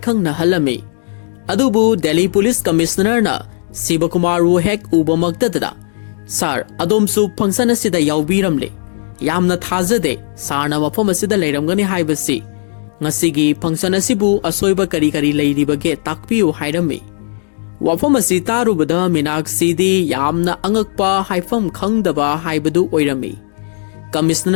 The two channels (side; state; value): right; silent; digital silence